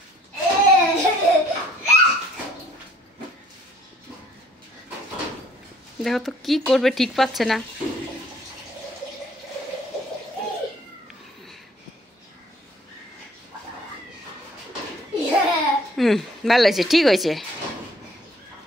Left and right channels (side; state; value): both; normal; correlation 0.59